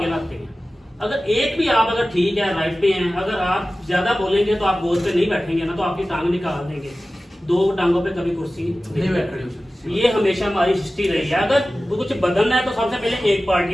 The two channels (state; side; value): normal; both; correlation 0.96